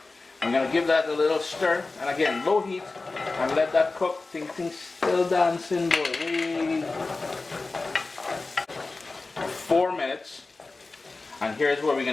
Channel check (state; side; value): quieter; right; 3.6 dB